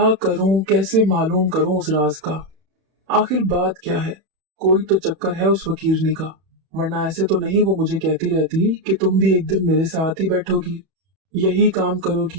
करूं, कैसे मालूम करूं उस राज का। आखिर बात क्या है, कोई तो चक्कर है उस फकीरनी का, वरना ऐसे तो नहीं वो मुझे कहती रहती कि तुम भी एक दिन मेरे साथ ही बैठोगी, यही काम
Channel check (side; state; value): left; late; 31 ms